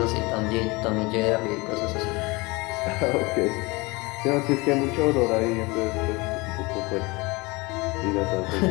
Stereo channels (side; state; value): right; quieter; 24.6 dB